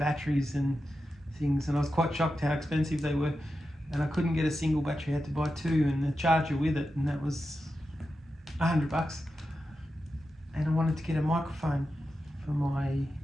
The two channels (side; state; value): both; normal; correlation 0.90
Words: and things, and I was quite shocked how expensive they were, and I couldn't get a single battery, I had to buy two and the charger with it, and that was $100. And I wanted to get a microphone for my